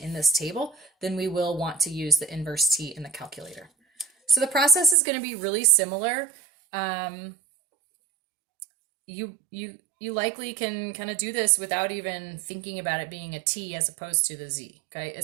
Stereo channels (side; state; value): left; drops out; at 5.0 s